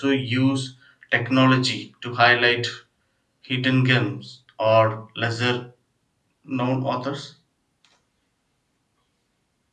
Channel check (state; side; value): identical; both; correlation 1.00